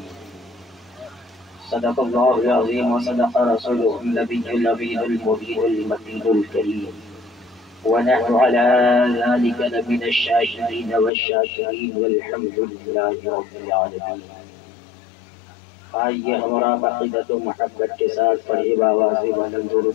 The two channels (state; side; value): drops out; right; at 11.1 s